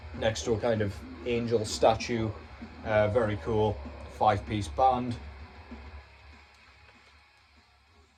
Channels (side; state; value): both; identical; correlation 1.00